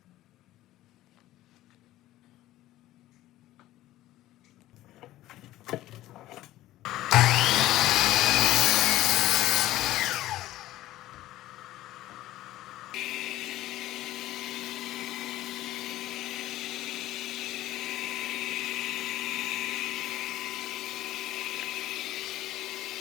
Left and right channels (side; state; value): right; quieter; 15.4 dB